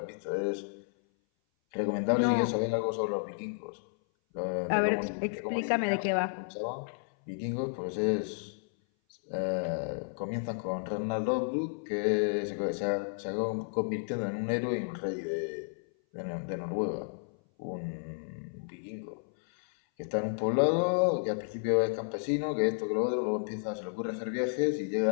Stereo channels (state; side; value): silent; right; 57 dB below the other